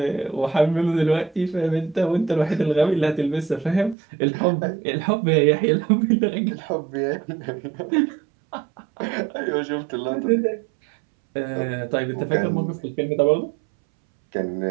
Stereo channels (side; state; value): left; drops out; at 4.0 s